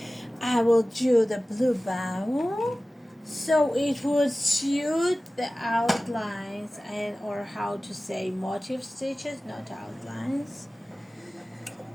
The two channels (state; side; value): normal; both; correlation 0.97